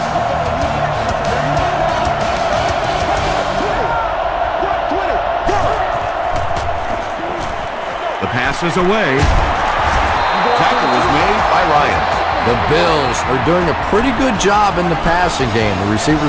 The pass is away. Tackle was made by Ryan. The Bills are doing a pretty good job in the passing game. The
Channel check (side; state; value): both; identical; correlation 1.00